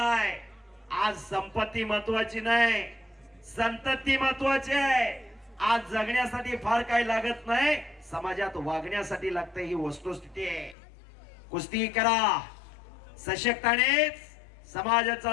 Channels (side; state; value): right; drops out; at 10.8 s